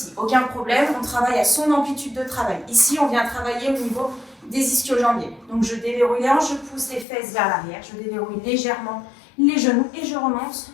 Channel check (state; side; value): drops out; right; at 7.1 s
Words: Aucun problème, on travaille à son amplitude de travail. Ici, on vient travailler au niveau des ischio-jambiers. Donc, je déverrouille les hanches, je pousse les fesses vers l'arrière, je déverrouille légèrement les genoux et je remonte.